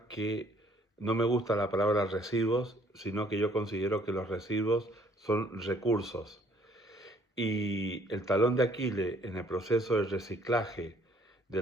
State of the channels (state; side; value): normal; both; correlation 0.61